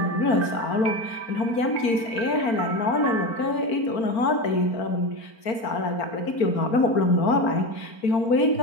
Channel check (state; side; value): late; right; 4.4 ms